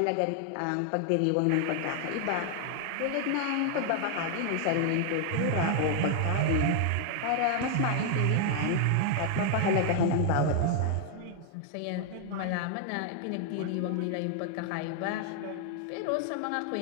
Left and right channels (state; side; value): different; both; correlation 0.00